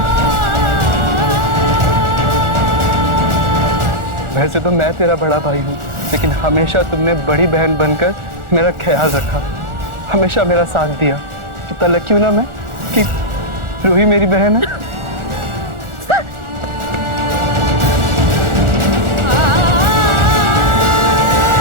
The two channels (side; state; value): left; late; 1.4 ms